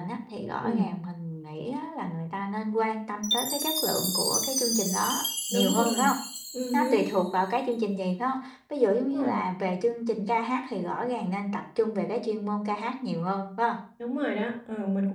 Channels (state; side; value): identical; both; correlation 1.00